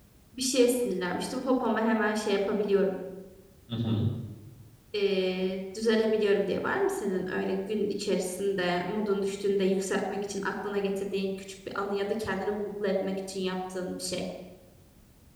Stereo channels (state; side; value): identical; both; correlation 1.00